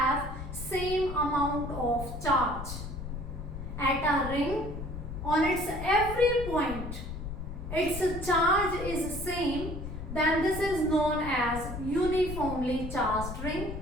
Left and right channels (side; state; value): left; noise; rumble, 7 dB below the sound